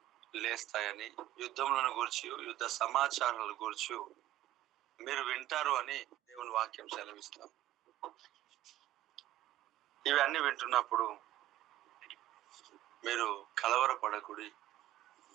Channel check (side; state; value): left; quieter; 14.2 dB